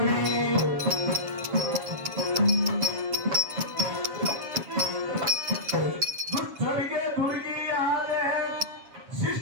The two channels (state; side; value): late; left; 7.3 ms